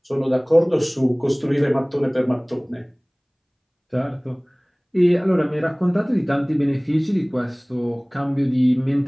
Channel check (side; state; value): both; identical; correlation 1.00